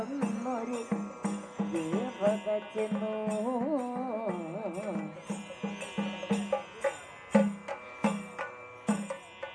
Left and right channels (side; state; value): both; identical; correlation 1.00